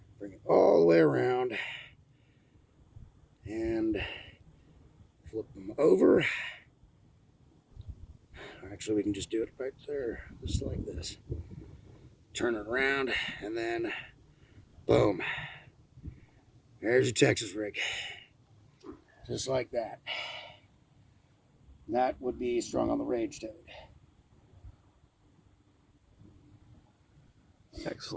bring it all the way around and flip them over. Actually, we can just do it right there, just like this. Turn it around and then boom. There's your Texas rig. Just like that. That would be strung on the rage toad.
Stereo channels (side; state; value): both; identical; correlation 1.00